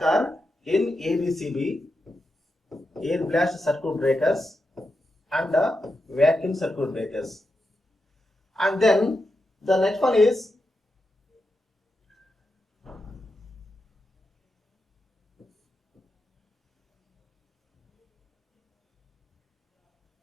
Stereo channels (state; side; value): normal; both; correlation 0.87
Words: in ABCB, air blast circuit breakers, and vacuum circuit breakers. And then the next one is